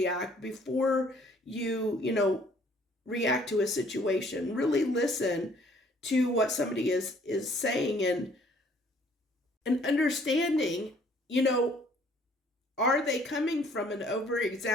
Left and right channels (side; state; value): both; normal; correlation 0.60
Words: before you react to a situation. Really listen to what somebody is saying, and understanding, are they coming from an over